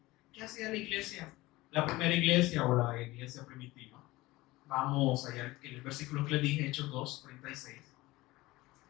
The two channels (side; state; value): right; quieter; 19.6 dB